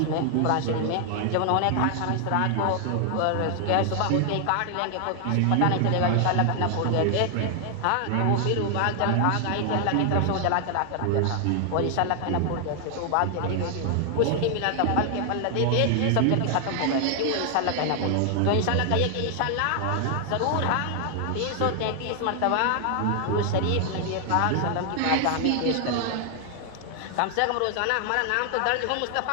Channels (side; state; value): both; different; correlation 0.00